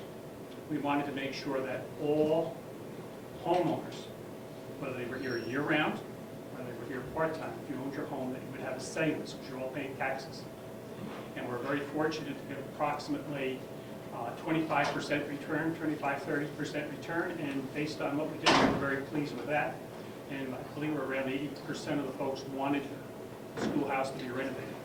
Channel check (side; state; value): both; identical; correlation 1.00